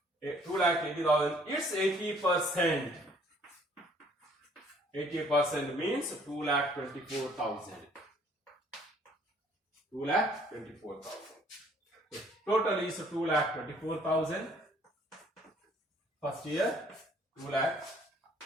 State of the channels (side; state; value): both; normal; correlation 0.59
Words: 2,80,000. It's 80%. 80% means 2,24,000. 2,24,000. Total is 2,24,000. First year